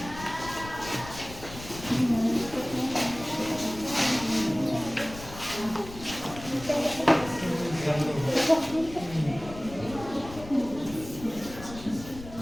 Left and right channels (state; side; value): noise; left; rumble, 14 dB below the sound